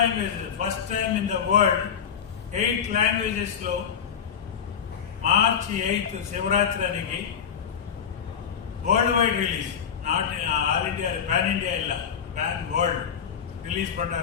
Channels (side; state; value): right; quieter; 7.7 dB